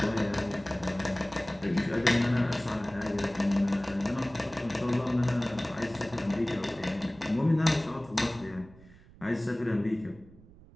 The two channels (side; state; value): right; noise; rumble, 23 dB below the sound